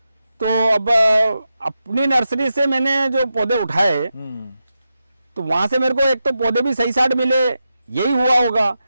तो अब अपनी नर्सरी से मैंने जो पौधे उठाए तो वहां से मेरे को एक तो पौधे भी सही साइड मिले, यही हुआ होगा।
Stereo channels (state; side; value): inverted; both; correlation -0.89